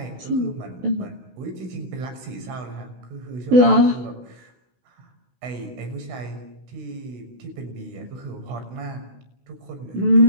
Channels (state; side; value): late; left; 16 ms